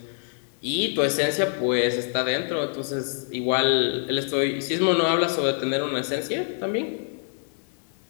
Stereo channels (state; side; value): silent; right; 61 dB below the other